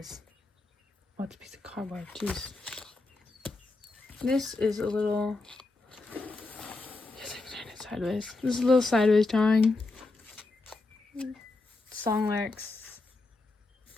Oh, it's a piece of cardboard. Jeez. This is a little... Yes, I can turn it sideways. This is a little sideways drawing. Song lyrics.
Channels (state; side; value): quieter; right; 3.3 dB